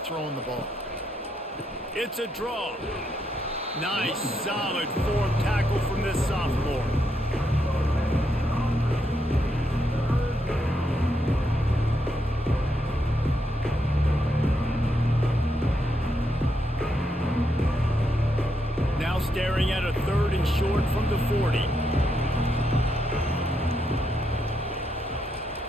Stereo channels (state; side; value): normal; both; correlation 0.80